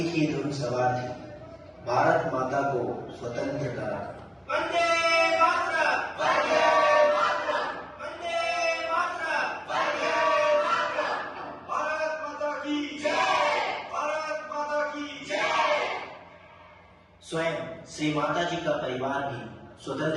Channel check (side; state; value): both; identical; correlation 1.00